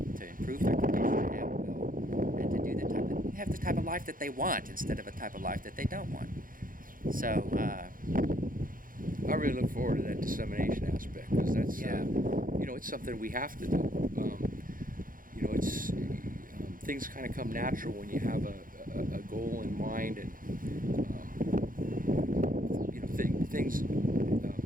to improve their condition at will, and to do have the type of life that they want instead of a type of life that they don't want. So, I really look forward to that dissemination aspect, because that's, Yeah. It's something we have to do. It's things kind of come natural when you have a goal in mind, and things,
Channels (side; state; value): left; late; 0.40 ms